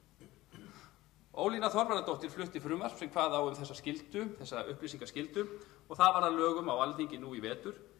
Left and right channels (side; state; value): right; quieter; 17.8 dB